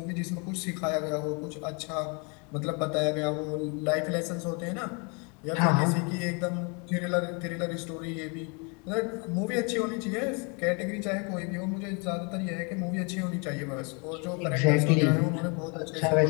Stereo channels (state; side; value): quieter; right; 33.8 dB